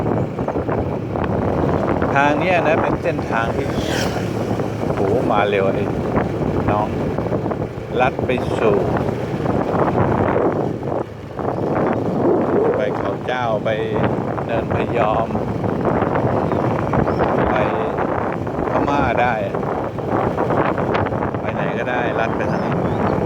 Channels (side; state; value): both; identical; correlation 1.00